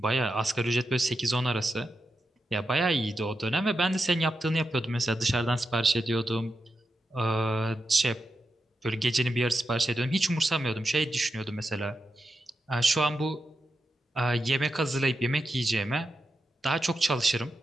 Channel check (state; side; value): normal; both; correlation 0.88